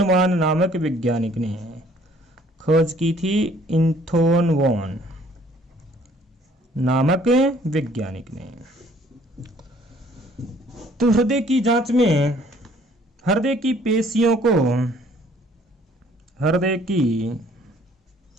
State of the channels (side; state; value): both; normal; correlation 0.59